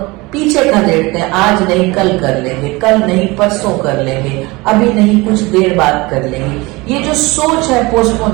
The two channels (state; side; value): quieter; left; 23.3 dB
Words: पीछे कर देते हैं। आज नहीं कल कर लेंगे, कल नहीं परसों कर लेंगे, अभी नहीं कुछ देर बाद कर लेंगे। ये जो सोच है